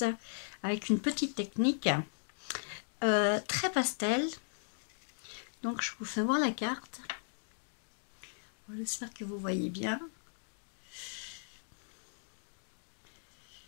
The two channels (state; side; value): silent; right; digital silence